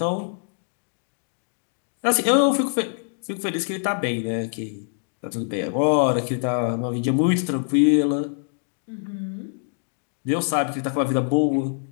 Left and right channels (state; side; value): silent; right; digital silence